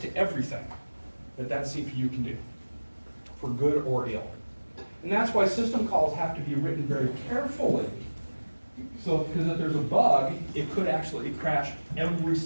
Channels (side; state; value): both; inverted; correlation -1.00